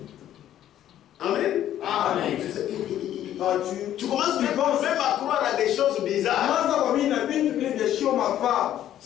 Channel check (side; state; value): right; quieter; 11.7 dB